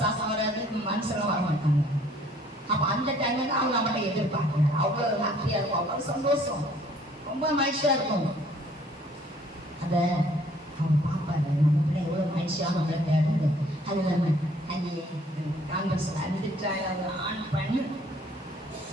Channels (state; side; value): normal; both; correlation 0.59